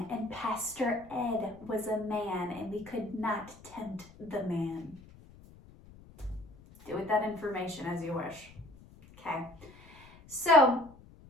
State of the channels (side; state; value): left; noise; rumble, 22 dB below the sound